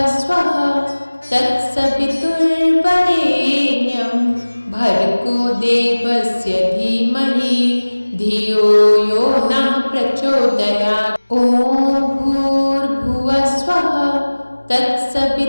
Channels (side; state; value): both; inverted; correlation -1.00